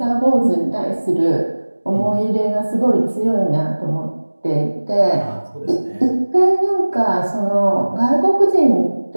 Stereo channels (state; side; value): inverted; both; correlation -1.00